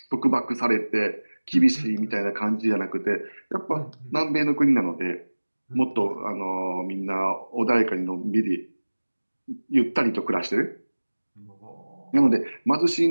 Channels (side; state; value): both; inverted; correlation -1.00